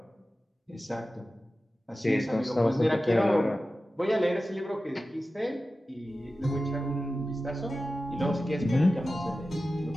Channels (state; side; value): normal; both; correlation 0.94